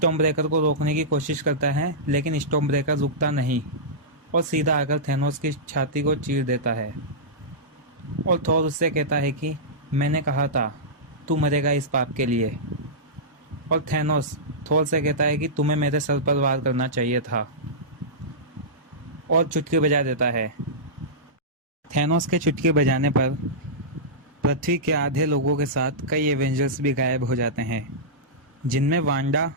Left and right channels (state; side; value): normal; both; correlation -0.15